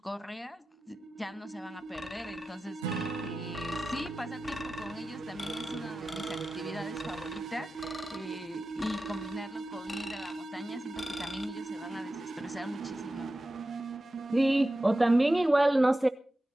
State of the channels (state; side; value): normal; both; correlation 0.94